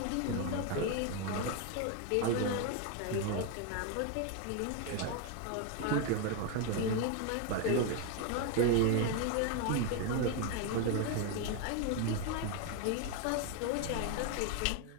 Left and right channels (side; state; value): both; different; correlation 0.01